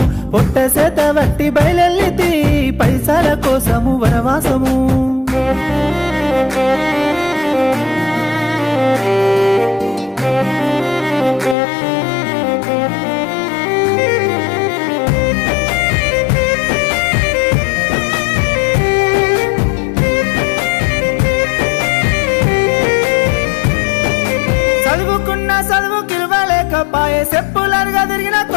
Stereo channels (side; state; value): right; drops out; at 11.6 s